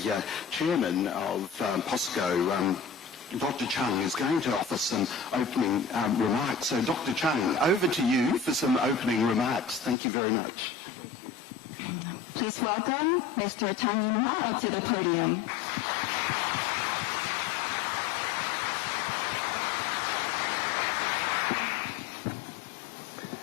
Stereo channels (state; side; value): drops out; right; at 10.0 s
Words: chairman of POSCO, Dr. Chung, is going to offer some opening remarks. So, Dr. Chung, over to you for some opening remarks. Thank you very much. Please welcome Mr. Chang In-hwa up to the podium.